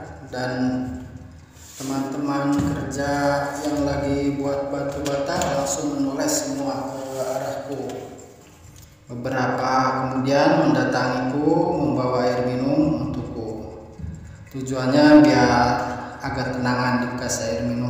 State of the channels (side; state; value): both; identical; correlation 1.00